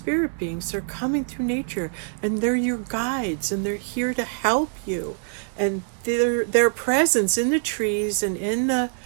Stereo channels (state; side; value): silent; left; digital silence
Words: beings. They're coming through nature, and they're your guides, and they're here to help you And their presence in the trees and in the